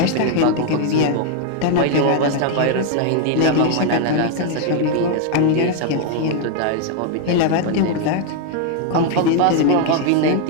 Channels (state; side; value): different; both; correlation 0.00